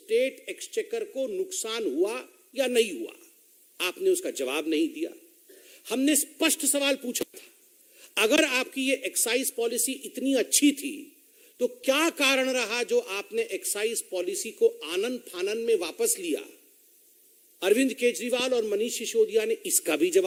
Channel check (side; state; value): both; identical; correlation 1.00